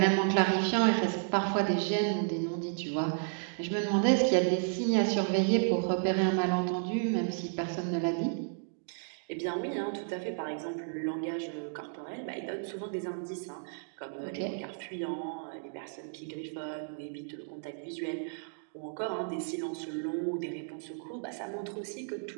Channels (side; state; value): left; silent; digital silence